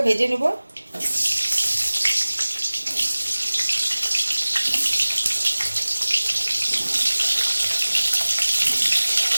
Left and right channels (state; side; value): inverted; both; correlation -1.00